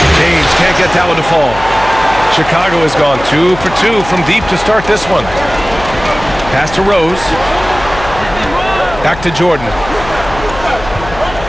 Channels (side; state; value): left; noise; hum, 13 dB below the sound